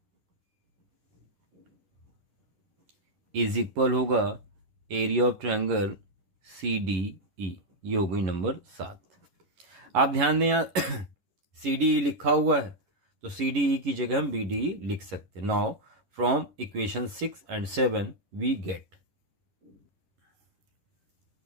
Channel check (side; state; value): left; late; 11 ms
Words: is equal होगा एरिया ऑफ ट्रायंगल CDE। ये हो गई नंबर 7। आप ध्यान दें यहाँ CDE लिखा हुआ है तो CDE की जगह हम BDE लिख सकते हैं। Now from equation 6 and 7 we get